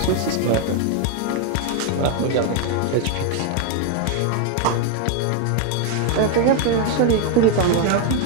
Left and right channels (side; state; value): both; different; correlation 0.00